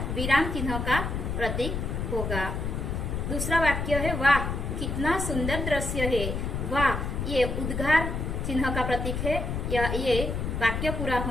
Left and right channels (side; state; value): left; noise; rumble, 2 dB below the sound